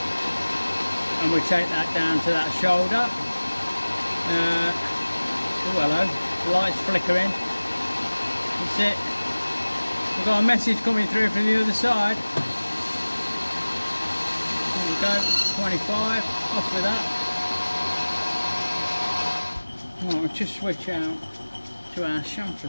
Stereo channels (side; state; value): both; inverted; correlation -1.00